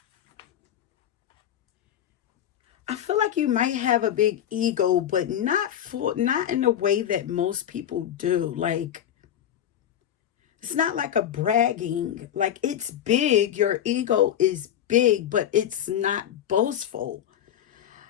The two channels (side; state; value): right; quieter; 10.4 dB